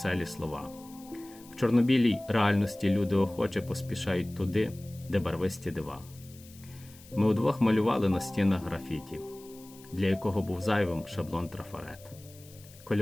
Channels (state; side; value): noise; left; hiss, 22 dB below the sound